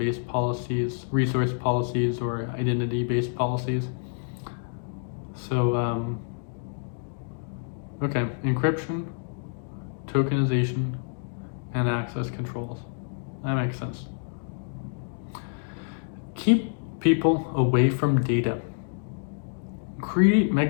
policies, resource policies, or identity-based policies. So, okay, encryption, tokenization, and access controls. That makes sense. Keep people away from data. Create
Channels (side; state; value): right; silent; digital silence